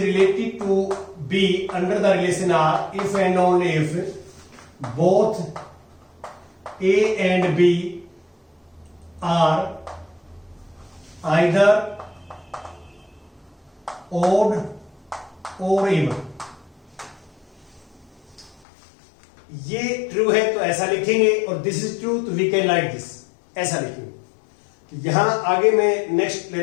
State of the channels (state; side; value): drops out; right; at 18.6 s